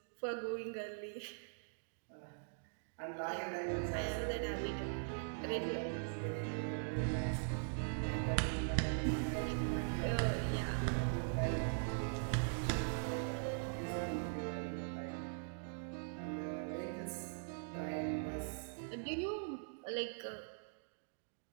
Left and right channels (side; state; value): left; silent; digital silence